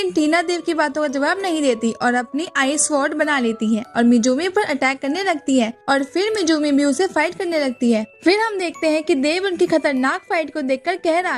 टीना देव की बातों का जवाब नहीं देती और अपनी आइस स्वॉर्ड बना लेती है और मिजूमी पर अटैक करने लगती है और फिर मिजूमी भी उसे फाइट करने लगती है। फिर हम देखते हैं कि देव उनकी खतरनाक फाइट को देखकर कह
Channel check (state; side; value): identical; both; correlation 1.00